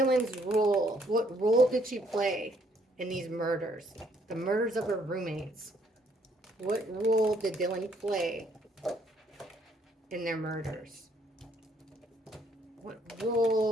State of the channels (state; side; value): normal; both; correlation 0.67